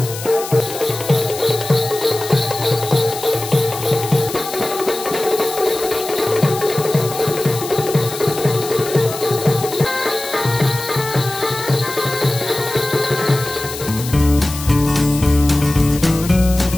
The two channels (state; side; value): noise; left; hiss, 10 dB below the sound